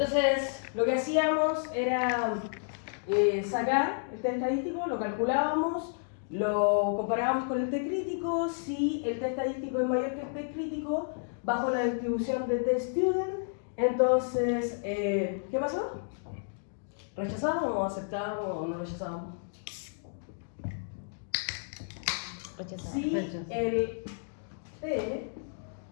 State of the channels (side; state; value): right; silent; digital silence